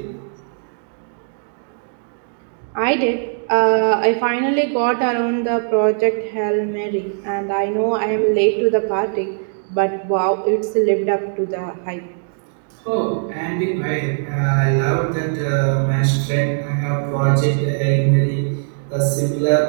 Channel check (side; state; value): left; silent; digital silence